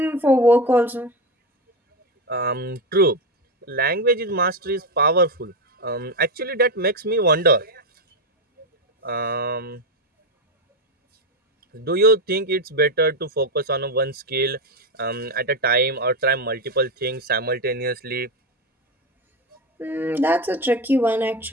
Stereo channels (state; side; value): normal; both; correlation 0.12